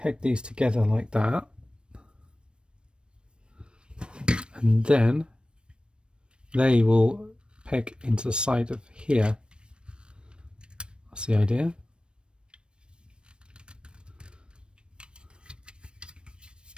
these together like that, and then they will peg into the side of here. That's the idea.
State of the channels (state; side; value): late; left; 0.055 ms